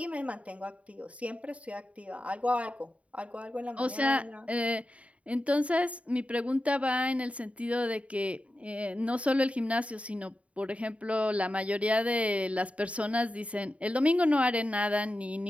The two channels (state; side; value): late; left; 0.065 ms